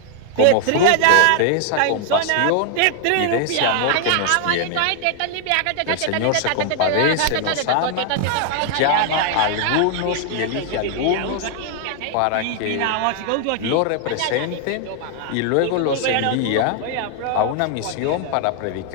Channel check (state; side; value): different; both; correlation 0.00